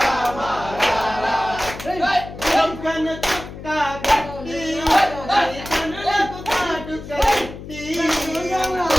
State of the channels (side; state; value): left; noise; hum, 12 dB below the sound